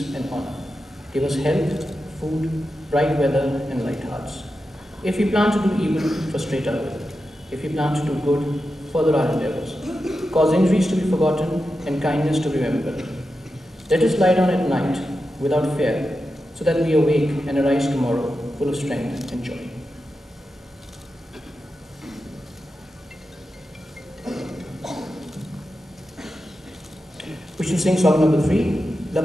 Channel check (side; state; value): both; normal; correlation 0.90